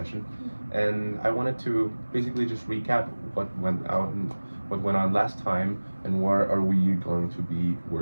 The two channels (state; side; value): inverted; both; correlation -1.00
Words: and I wanted to basically just recap what went out and what went on last time, and where are we going to be